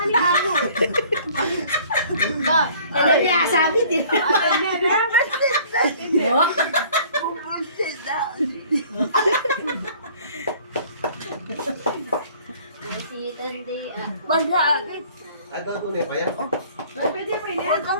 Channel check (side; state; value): both; inverted; correlation -0.53